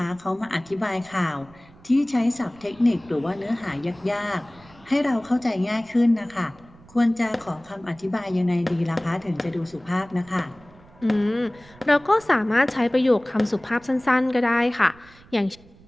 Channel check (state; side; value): noise; right; rumble, 25 dB below the sound